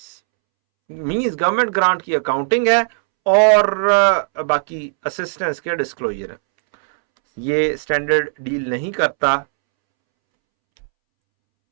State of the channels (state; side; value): silent; left; 67 dB below the other